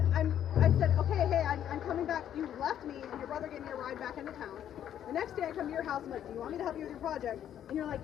I said, okay, hey, I'm coming back. You left me, and your brother gave me a ride back into town. The next day I come to your house, I'm like, do you want me to help you with your project? And you're like,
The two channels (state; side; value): quieter; right; 10.3 dB